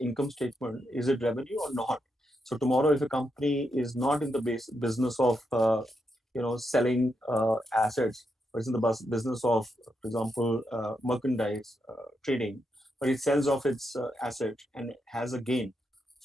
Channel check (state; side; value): normal; both; correlation 0.83